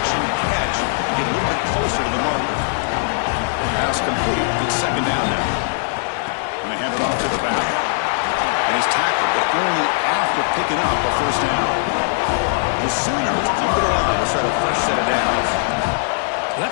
and catch. Get a little bit closer to the marker. Pass complete. It's second down now. And they hand it off to the back. And he's tackled, but only after picking up a first down. The Sooners come to the line to set a fresh set of downs.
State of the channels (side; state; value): right; silent; digital silence